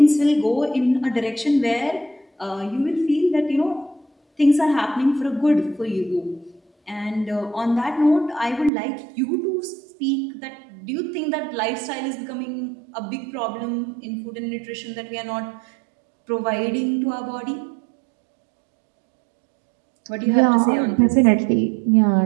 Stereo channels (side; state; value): left; drops out; at 8.7 s